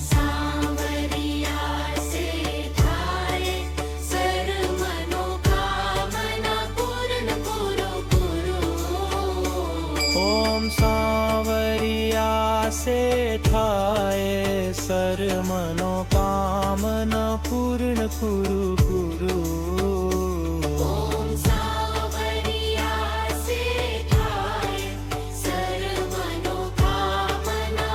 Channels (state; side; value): identical; both; correlation 1.00